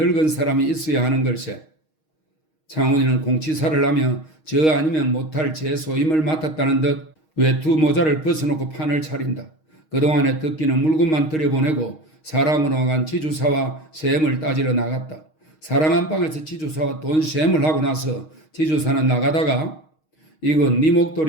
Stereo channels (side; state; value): right; late; 6.4 ms